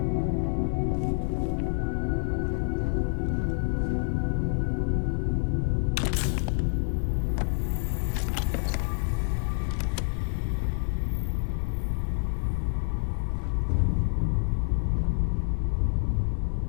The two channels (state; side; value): silent; right; 60 dB below the other